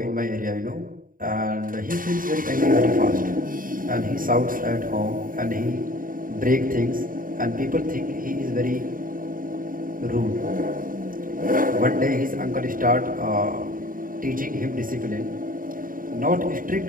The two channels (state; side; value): late; left; 0.40 ms